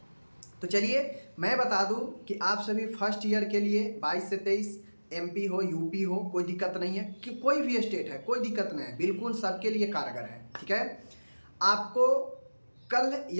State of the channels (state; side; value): inverted; both; correlation -1.00